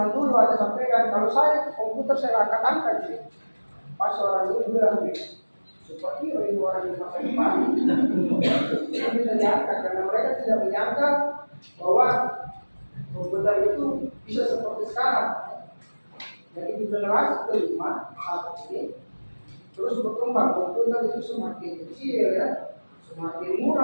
dulu, Anda sampaikan kalau saya komputer saya akan angkat sih. Pas orang dulu bilang seperti orang di masa depan, itu bisa diangkat karena mereka tidak menyangka bahwa komputer itu bisa seperti sekarang. Jadi di generasi kelima saat ini terus berkembang, komputer itu semakin kecil ya, semakin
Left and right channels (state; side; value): inverted; both; correlation -1.00